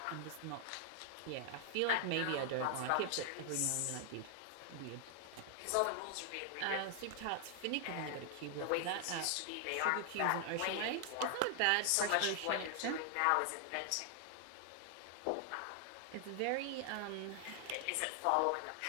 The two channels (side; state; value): both; different; correlation 0.00